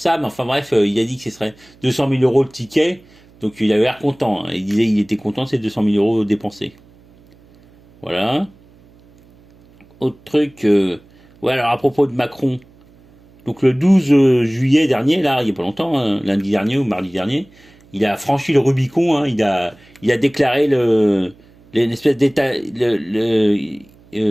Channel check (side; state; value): right; noise; hum, 28 dB below the sound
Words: mais enfin bref, il a dit que ce serait 200 000 euros le ticket. Donc il avait l'air content. Hein. Il disait qu'il était content de ces 200 000 euros dépensés. Voilà. Autre truc, ouais, alors à propos de Macron. Donc le 12 juillet dernier, là, il n'y a pas longtemps, hein, lundi dernier ou mardi dernier, il a franchi le Rubicon. Hein, il a déclaré une espèce d'état, qu'il